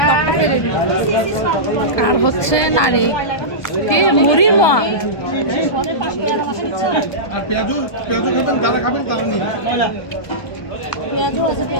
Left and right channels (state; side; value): late; right; 1.2 ms